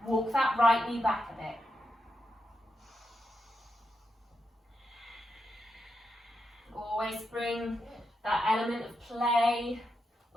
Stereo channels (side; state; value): both; normal; correlation 0.85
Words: Walk that right knee back a bit. Always bring that element of play,